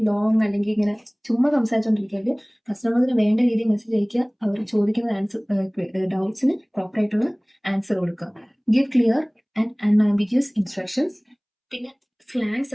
Long അല്ലെങ്കിൽ ഇങ്ങനെ ചുമ്മാ സംസാരിച്ചുകൊണ്ടിരിക്കരുത്. കസ്റ്റമേഴ്സിന് വേണ്ട രീതിയിൽ മെസ്സേജ് അയക്കുക. അവർ ചോദിക്കുന്ന ഡൗട്ട്സിന് പ്രോപ്പറായിട്ടുള്ള ആൻസർ കൊടുക്കുക. Give clear and unambiguous instructions. പിന്നെ സ്ലാങ്സ്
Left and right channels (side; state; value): both; identical; correlation 1.00